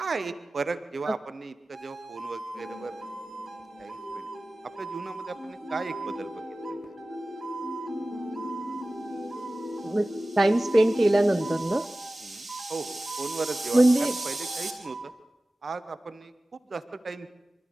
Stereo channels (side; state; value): both; normal; correlation 0.97